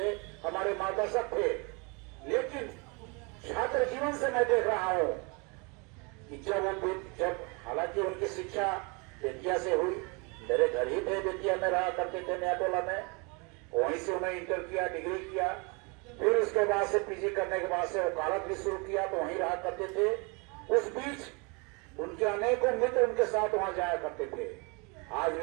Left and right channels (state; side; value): quieter; left; 30.8 dB